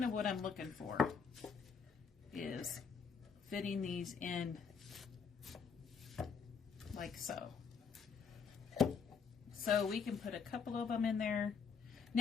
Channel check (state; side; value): quieter; right; 5.9 dB